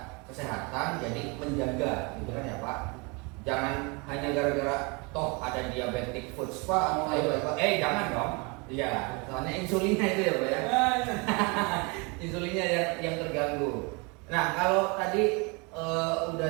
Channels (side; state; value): left; quieter; 29.8 dB